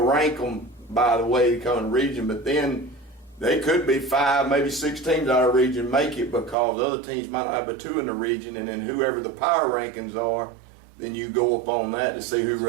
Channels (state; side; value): drops out; left; at 6.6 s